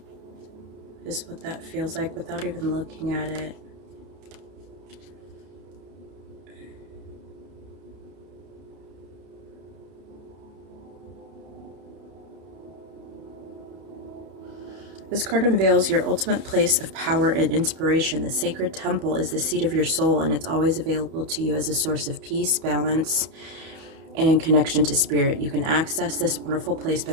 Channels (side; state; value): left; late; 31 ms